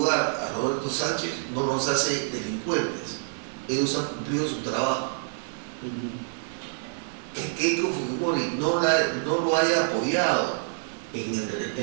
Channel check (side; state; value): left; silent; digital silence